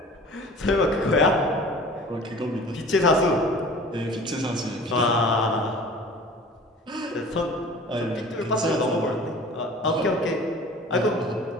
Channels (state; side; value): normal; both; correlation 0.43